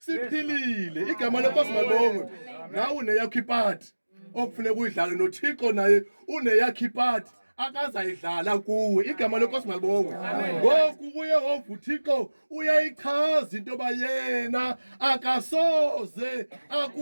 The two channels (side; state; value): both; inverted; correlation -1.00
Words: Igama lenkosi malibongwe. Nawe uneyakho ipati okufuneka uyidlale noThixo naye uneyakho ipati akazayidlala kuwe. Igama lenkosi malibongwe. Ngoku uYehova uThixo uyayichaza into yoba yena akasoze